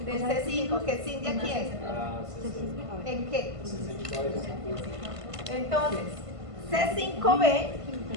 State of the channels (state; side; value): late; left; 1.5 ms